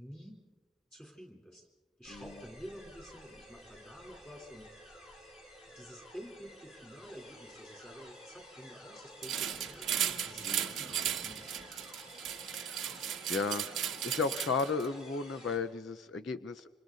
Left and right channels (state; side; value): normal; both; correlation 0.38